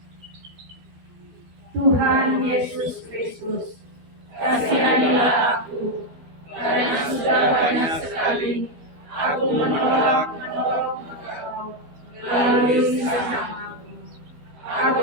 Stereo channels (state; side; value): late; left; 12 ms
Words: Tuhan Yesus Kristus, kasihani